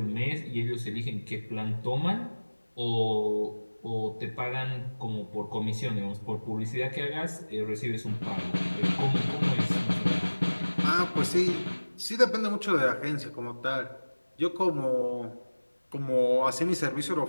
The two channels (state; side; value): inverted; both; correlation -1.00